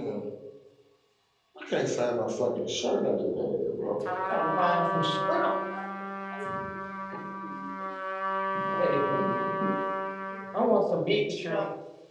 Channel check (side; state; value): both; identical; correlation 1.00